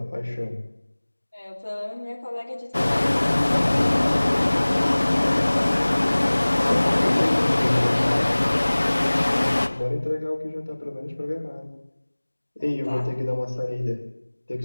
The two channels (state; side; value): inverted; both; correlation -1.00